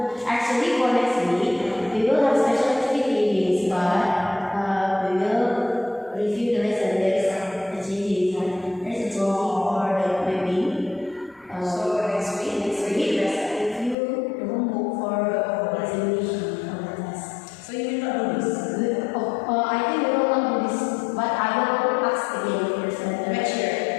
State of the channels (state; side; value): drops out; right; at 14.0 s